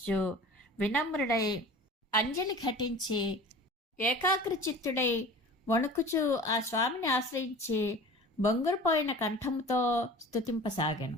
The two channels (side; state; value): both; normal; correlation 0.40